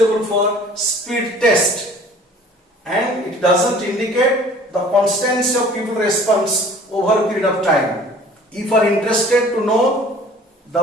for speed test, and it doesn't indicate the constancy of pupil response over a period of time. If you are interested to know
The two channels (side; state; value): both; normal; correlation 0.49